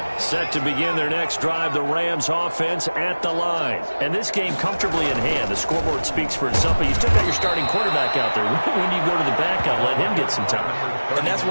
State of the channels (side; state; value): both; inverted; correlation -1.00